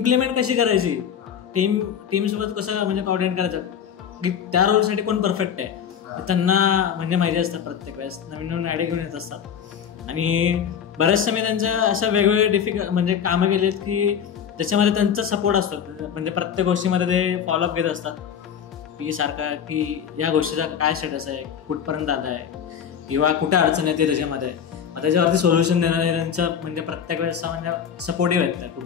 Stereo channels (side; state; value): right; quieter; 8.1 dB